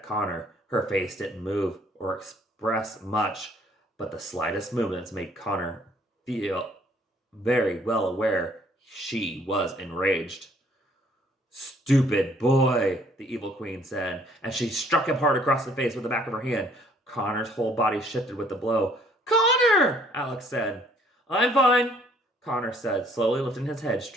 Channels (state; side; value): normal; both; correlation 0.61